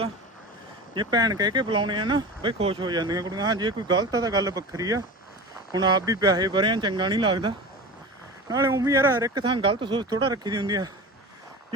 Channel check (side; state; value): both; normal; correlation 0.31